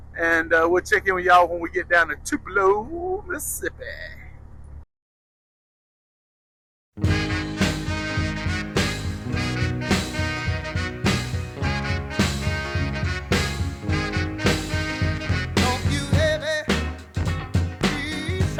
and we'll check in with y'all when we get down to Tupelo, Mississippi.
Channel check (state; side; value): identical; both; correlation 1.00